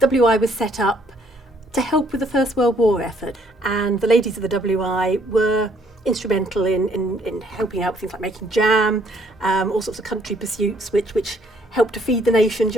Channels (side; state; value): both; normal; correlation 0.66